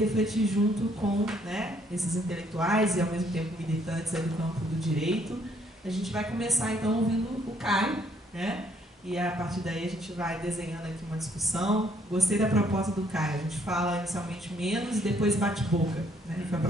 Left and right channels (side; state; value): both; normal; correlation 0.67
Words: junto com, né, esses intelectuais e, ao mesmo tempo, militantes aí do campo do direito. A gente vai começar, então, ouvindo o Caio, né? E, a partir daí, a gente vai desenhando aqui uma discussão. Gostei da proposta do Caio. A gente fala inicialmente menos e depois bate-boca, né? Foi a